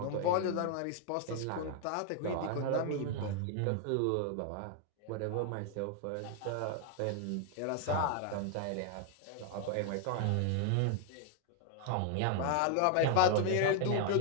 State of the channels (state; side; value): different; both; correlation 0.00